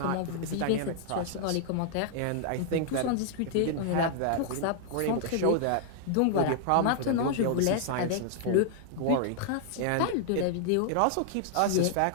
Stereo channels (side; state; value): both; different; correlation 0.00